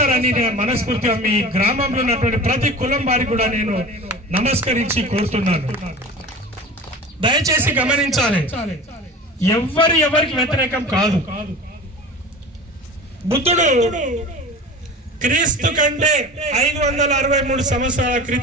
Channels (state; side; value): normal; both; correlation 0.36